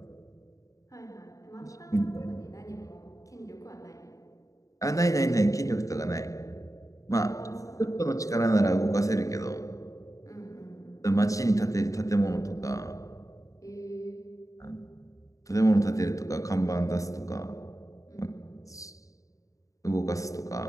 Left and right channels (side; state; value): right; late; 0.16 ms